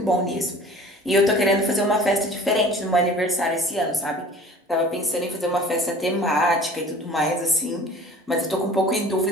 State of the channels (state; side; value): normal; both; correlation 0.46